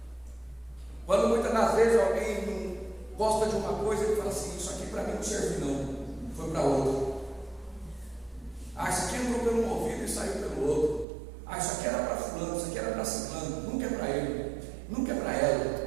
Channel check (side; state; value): left; drops out; at 11.1 s